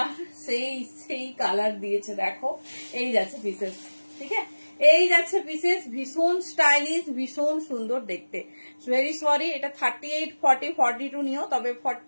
সেই কালার দিয়েছে, দেখো। এই যাচ্ছে পিসেস, ঠিক আছে। এই যাচ্ছে পিসেস, ভীষণ স্টাইলিশ, ভীষণ সুন্দর দেখতে। ভেরি সরি, এটা 38, 40, 42 নিও, তবে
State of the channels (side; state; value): both; inverted; correlation -1.00